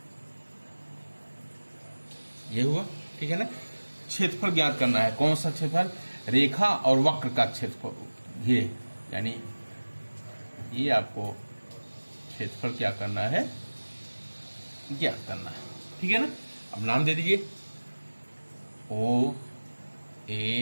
ये हुआ। ठीक है ना। क्षेत्रफल ज्ञात करना है। कौन सा क्षेत्रफल? रेखा और वक्र का क्षेत्रफल घिरे, यानी ये आपको क्षेत्रफल क्या करना है? ज्ञात करना है। ठीक है ना। अब नाम दे दीजिए, O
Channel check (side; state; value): both; inverted; correlation -1.00